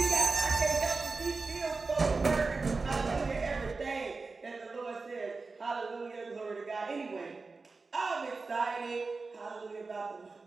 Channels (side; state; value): left; quieter; 4.0 dB